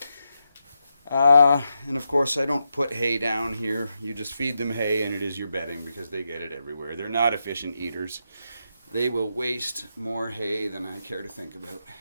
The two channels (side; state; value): both; inverted; correlation -0.85